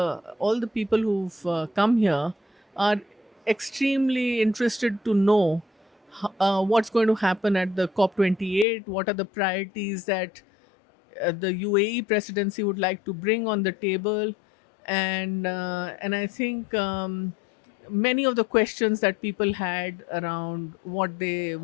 people who've come here are extremely interested to know what's going to happen at the COP28, what are the priorities that the UAE presidency would like to bring on the table, and I think many of the questions that people had around what they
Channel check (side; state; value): right; drops out; at 8.7 s